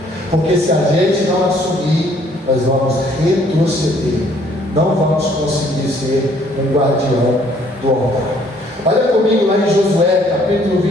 Porque se a gente não assumir, nós vamos retroceder. Não vamos conseguir ser um guardião do altar. Olha comigo lá em Josué, capítulo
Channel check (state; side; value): normal; both; correlation 0.62